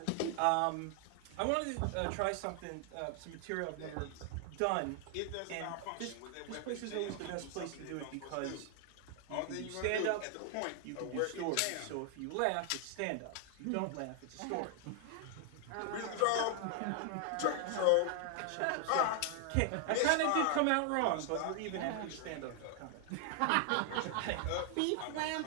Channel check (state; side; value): different; both; correlation 0.00